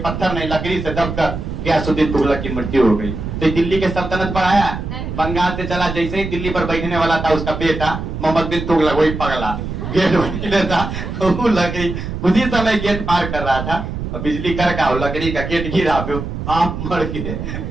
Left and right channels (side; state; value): right; noise; rumble, 6 dB below the sound